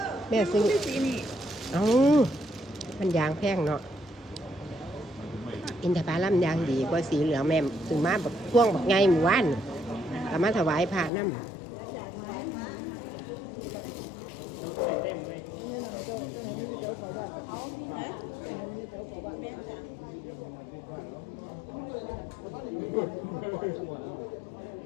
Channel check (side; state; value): right; drops out; at 11.1 s